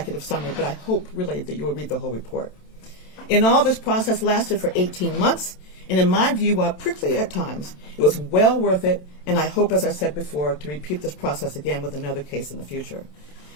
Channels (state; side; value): late; right; 27 ms